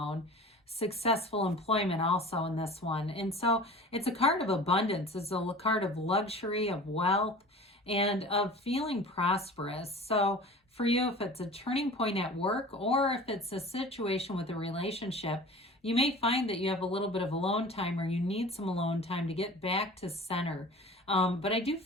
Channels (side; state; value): both; normal; correlation 0.40